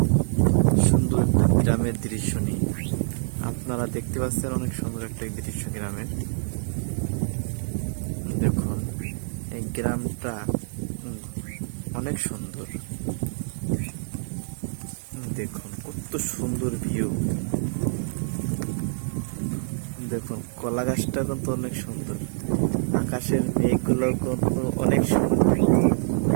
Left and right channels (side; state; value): left; silent; 61 dB below the other